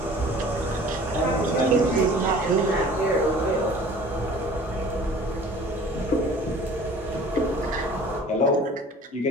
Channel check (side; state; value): both; normal; correlation 0.47